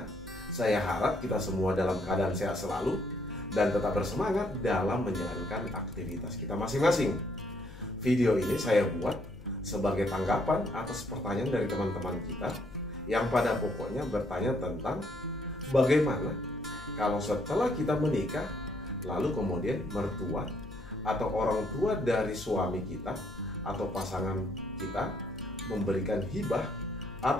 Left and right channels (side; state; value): left; noise; hum, 17 dB below the sound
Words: Saya harap kita semua dalam keadaan sehat selalu dan tetap bersemangat dalam menjalankan aktivitas kita masing-masing. Video ini saya buat sebagai tanggapan atas pertanyaan dari teman-teman kita yang pada pokoknya bertanya tentang bagaimana kalau setelah kita menikah, lalu kemudian mertua atau orang tua dari suami kita atau pasangan kita memberikan hibah